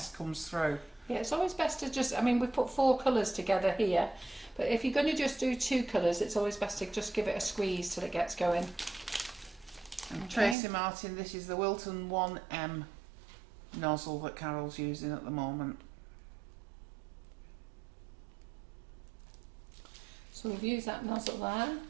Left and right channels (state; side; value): drops out; left; at 10.6 s